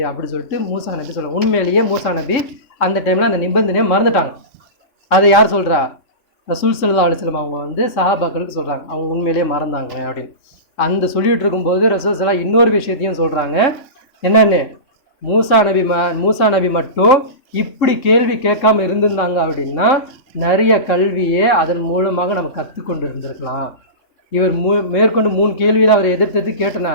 அப்படி சொல்லிட்டு மூசா நபி சொல்லுவாங்க. உண்மையிலேயே மூசா நபி அந்த டைமில் அந்த நிபந்தனையை மறந்துட்டாங்க. அதை யார் சொல்கிறா? ரசூல் ஸல்லல்லாஹு அலைஹி வஸல்லம் அவங்க வந்து சஹாபாக்களுக்கு சொல்கிறாங்க, அவங்க உண்மையிலேயே மறந்தாங்க அப்படின்னு. அந்த சொல்லிகிட்டு இருக்கும்போது ரசூல் ஸல்லல்லாஹு இன்னொரு விஷயத்தையும் சொல்கிறாங்க. என்னென்னு, மூசா நபி மட்டும் இப்படி கேள்வி கேட்காம இருந்திருந்தாங்க அப்படின்னா நிறைய கல்வியே அதன் மூலமாக நம்ம கற்றுக்கொண்டு இருந்திருக்கலாம். இவர் மேற்கொண்டு 3 கேள்வியில் அவர் எதிர்த்து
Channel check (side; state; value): right; late; 3.6 ms